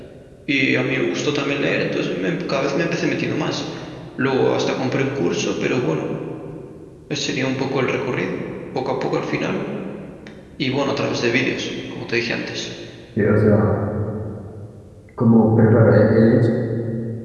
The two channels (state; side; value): identical; both; correlation 1.00